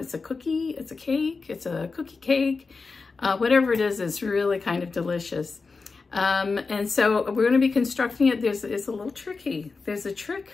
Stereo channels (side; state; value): right; quieter; 4.3 dB